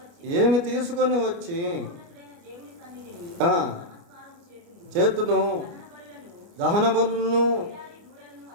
ఏమి తీసుకొని వచ్చి చేతును, దహన బలులను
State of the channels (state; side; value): late; left; 29 ms